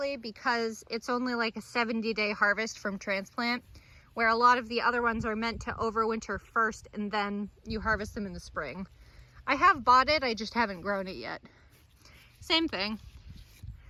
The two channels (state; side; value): identical; both; correlation 1.00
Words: because it's only like a 70-day harvest from transplant, where a lot of the other ones are meant to overwinter first and then you harvest them in the spring. I have bought it, I just haven't grown it yet. Same thing.